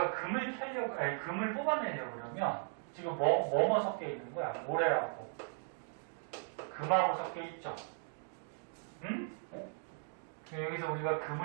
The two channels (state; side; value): silent; left; 53 dB below the other